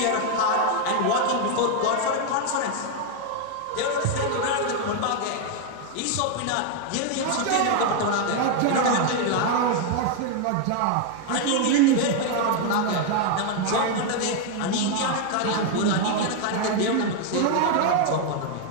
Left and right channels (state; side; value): different; both; correlation 0.00